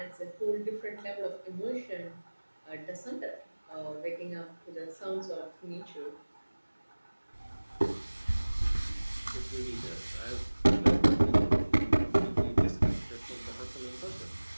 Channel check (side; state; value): both; inverted; correlation -1.00